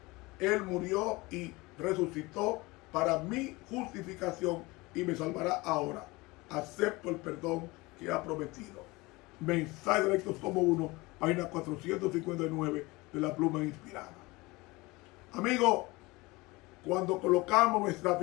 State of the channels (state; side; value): quieter; right; 22.7 dB